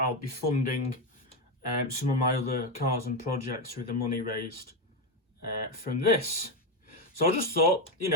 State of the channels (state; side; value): normal; both; correlation 0.09